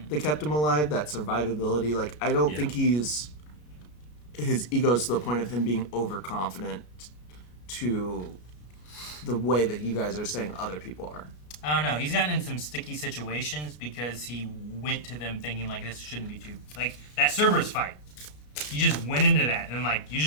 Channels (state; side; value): late; right; 33 ms